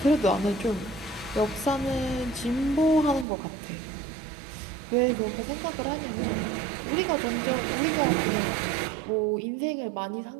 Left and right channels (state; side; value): drops out; left; at 3.2 s